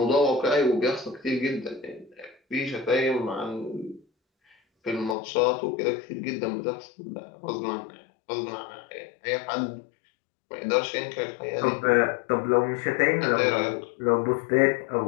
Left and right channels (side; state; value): right; drops out; at 5.2 s